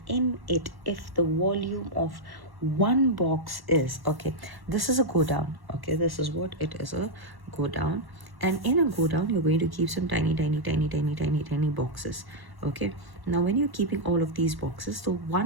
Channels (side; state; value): left; late; 1.1 ms